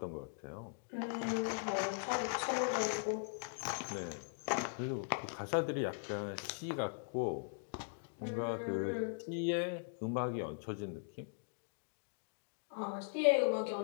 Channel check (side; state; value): right; silent; digital silence